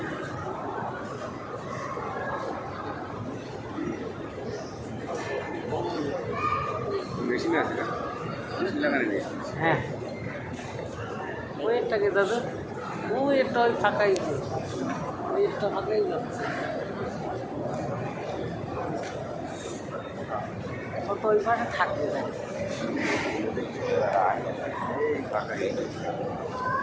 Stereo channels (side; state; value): both; identical; correlation 1.00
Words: হ্যাঁ, ওইটাকে দাদা, ওইটা ওই ফাঁকাই, ওইটা ফাঁকাই যাচ্ছে। কত ওই পাশে থাকবে না।